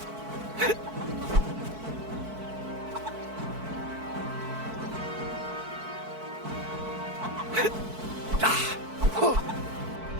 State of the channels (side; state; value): left; late; 4.6 ms